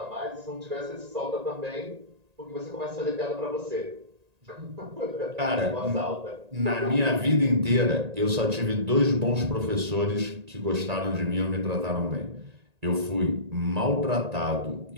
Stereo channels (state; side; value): late; left; 1.9 ms